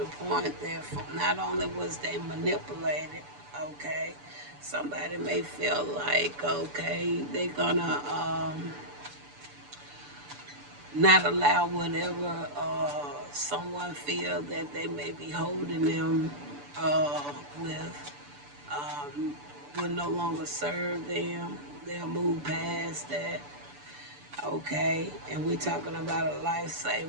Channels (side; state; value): left; late; 6.9 ms